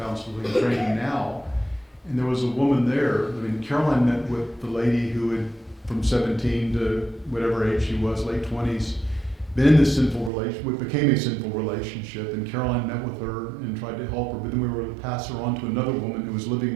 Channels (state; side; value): drops out; left; at 10.3 s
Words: training now. And there was a woman there. Caroline met with the lady who had, from 17 to whatever age she was, late 20s, been in this sinful relationship, what became a sinful relationship. And Caroline met with her and tried to help her. But then we were able to pass her on to another woman who was